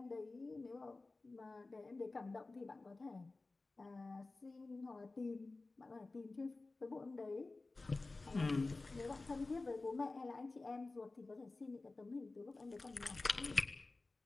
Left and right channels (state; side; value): quieter; right; 3.4 dB